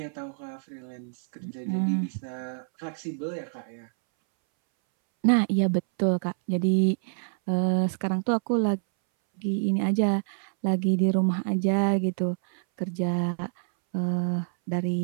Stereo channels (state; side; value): silent; left; 60 dB below the other